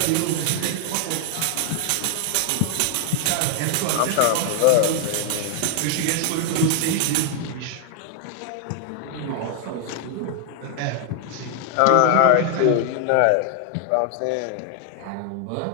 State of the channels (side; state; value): both; different; correlation 0.00